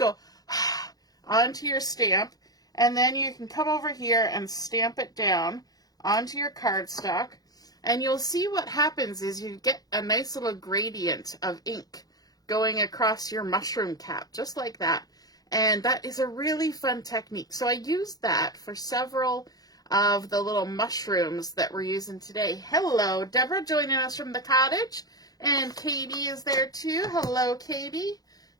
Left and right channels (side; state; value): right; late; 0.18 ms